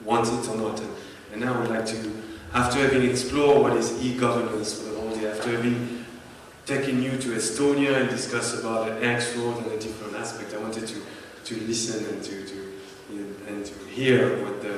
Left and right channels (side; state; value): both; identical; correlation 1.00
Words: want it or not. And now I would like to, after having explored what is e-governance for the whole day, after having taken you to Estonia and discuss about the X road and the different aspects, I wanted to listen and to hear what the